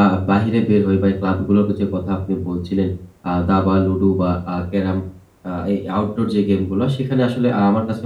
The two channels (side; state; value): both; identical; correlation 1.00